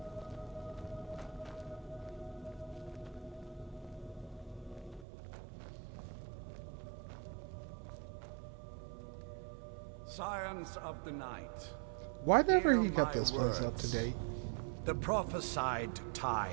Scions of the night. Why never hear he got my this place up to words. date? The prophesied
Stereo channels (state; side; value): drops out; left; at 5.1 s